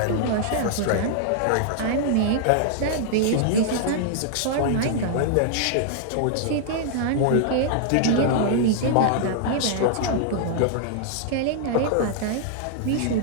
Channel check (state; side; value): different; both; correlation -0.01